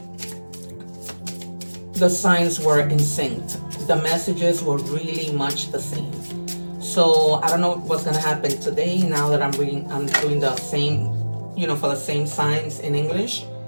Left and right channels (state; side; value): inverted; both; correlation -1.00